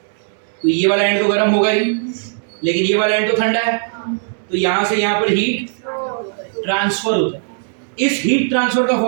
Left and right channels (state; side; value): silent; left; digital silence